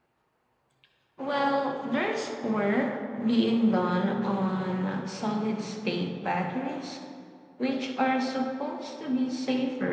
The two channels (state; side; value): identical; both; correlation 1.00